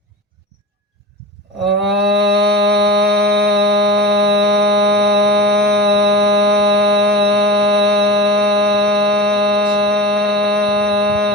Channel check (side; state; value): both; normal; correlation 0.30